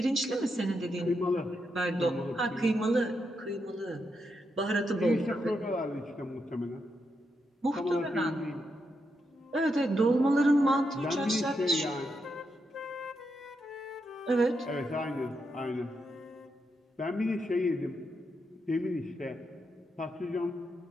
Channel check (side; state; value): both; normal; correlation 0.83